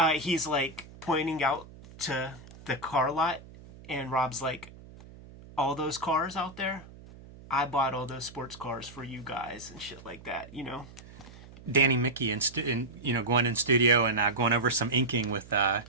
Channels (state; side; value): noise; right; hum, 19 dB below the sound